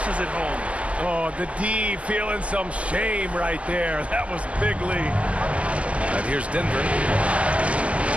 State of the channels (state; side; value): late; left; 0.063 ms